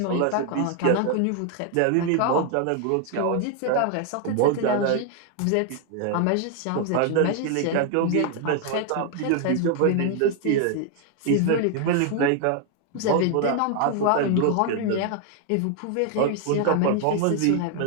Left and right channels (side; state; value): both; different; correlation 0.00